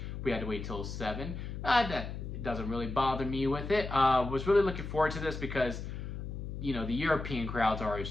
we had to wait till 7. That doesn't really bother me with it. Was really looking forward to this because, you know, the European crowds are always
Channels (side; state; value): left; noise; hum, 7 dB below the sound